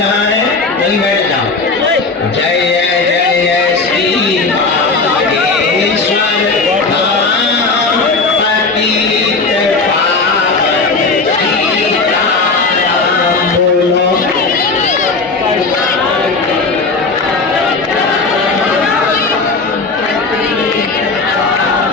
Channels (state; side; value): quieter; right; 4.0 dB